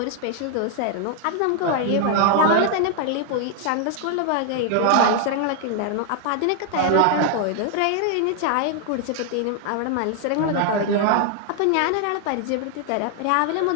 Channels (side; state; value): both; different; correlation 0.00